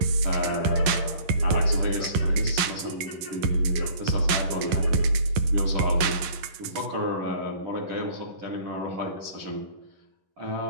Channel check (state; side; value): late; left; 11 ms